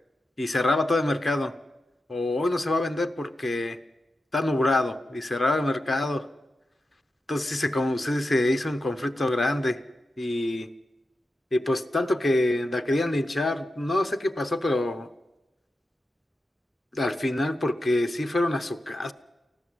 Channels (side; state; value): both; normal; correlation 0.90